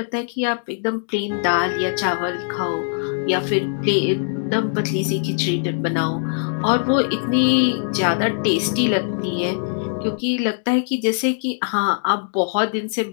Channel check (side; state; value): right; silent; digital silence